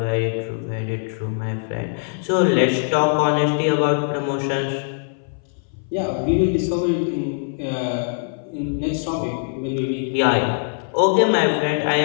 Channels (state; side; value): silent; right; 59 dB below the other